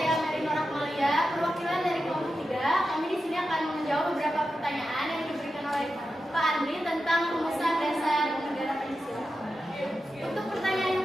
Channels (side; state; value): both; normal; correlation 0.90